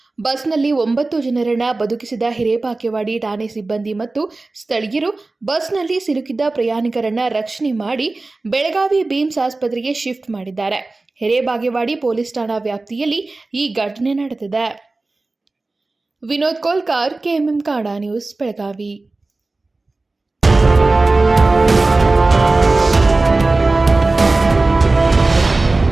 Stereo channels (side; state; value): left; quieter; 3.3 dB